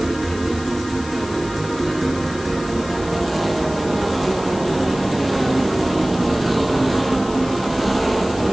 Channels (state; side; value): noise; left; hiss, 16 dB below the sound